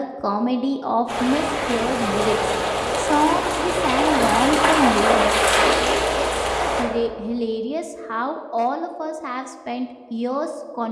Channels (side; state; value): both; identical; correlation 1.00